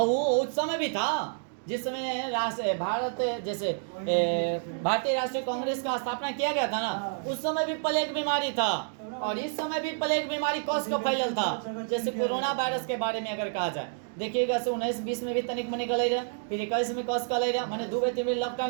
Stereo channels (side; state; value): left; silent; digital silence